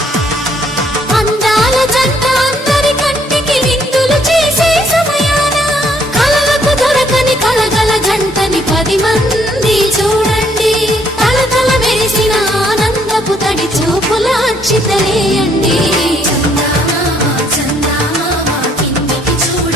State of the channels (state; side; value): normal; both; correlation 0.67